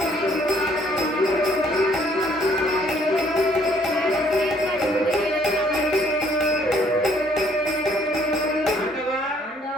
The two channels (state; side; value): normal; both; correlation 0.63